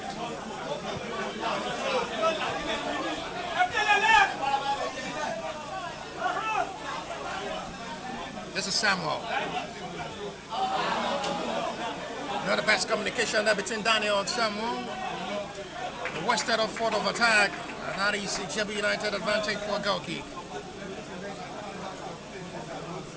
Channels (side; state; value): both; identical; correlation 1.00